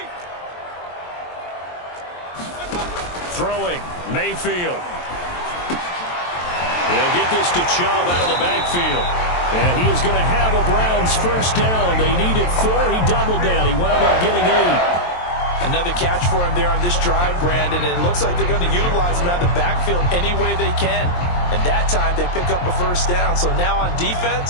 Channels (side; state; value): right; late; 23 ms